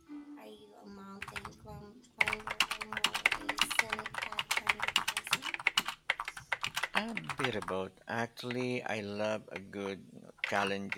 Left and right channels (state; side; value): identical; both; correlation 1.00